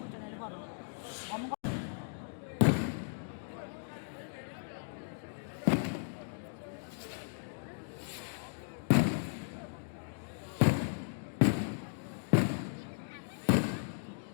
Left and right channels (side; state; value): right; silent; digital silence